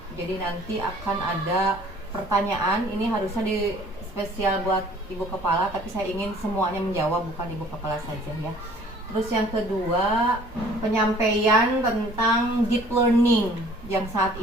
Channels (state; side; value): normal; both; correlation 0.53